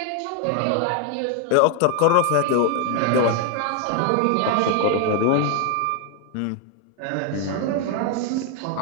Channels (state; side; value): different; both; correlation 0.01